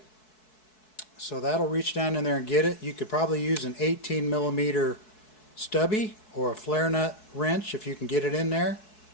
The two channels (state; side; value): late; right; 4.6 ms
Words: So that'll reach down in there and get it. You could probably use an 18mm stubby or a flare nut wrench if you can get it in there,